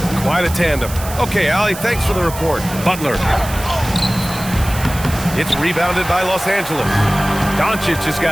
Quite a tandem. Okay, Allie, thanks for the report. Butler. It's rebounded by Los Angeles. Doncic has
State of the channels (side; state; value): right; noise; hiss, 12 dB below the sound